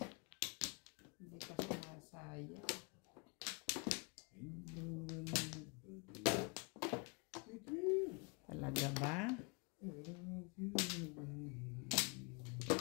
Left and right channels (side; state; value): right; quieter; 32.0 dB